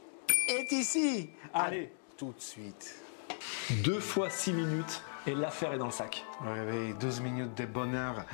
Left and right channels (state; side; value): silent; right; digital silence